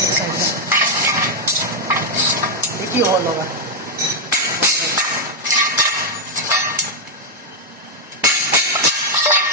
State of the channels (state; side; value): normal; both; correlation -0.01